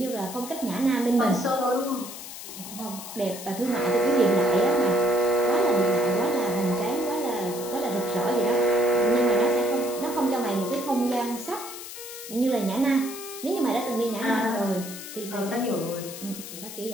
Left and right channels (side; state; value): left; noise; hiss, 11 dB below the sound